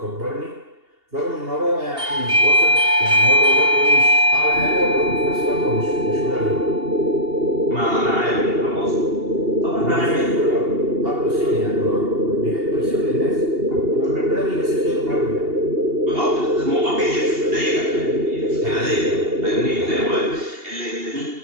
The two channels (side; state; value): left; late; 2.8 ms